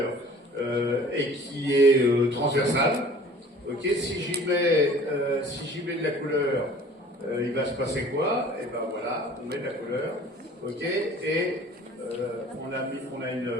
et qui est transversal. Ok, si j'y mets de la couleur, il va se passer quoi? Et ben voilà, on met de la couleur. Ok, et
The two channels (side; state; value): both; normal; correlation 0.48